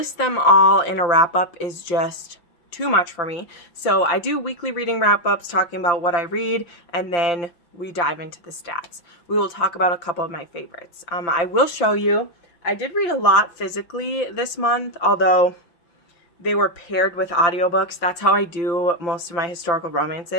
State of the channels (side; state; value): right; late; 5.8 ms